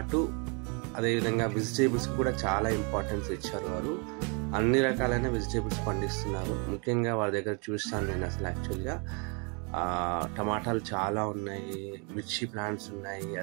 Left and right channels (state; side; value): quieter; left; 34.5 dB